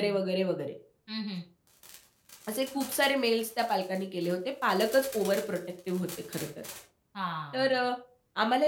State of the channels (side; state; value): both; identical; correlation 1.00